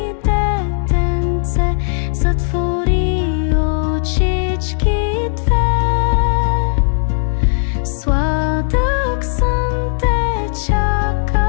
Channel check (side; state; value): right; silent; digital silence